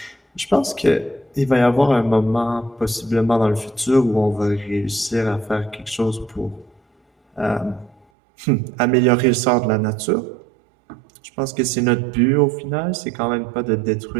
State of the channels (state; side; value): drops out; left; at 8.1 s